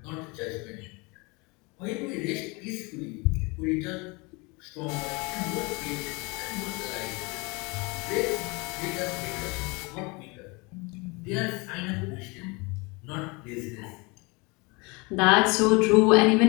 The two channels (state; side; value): quieter; right; 27.6 dB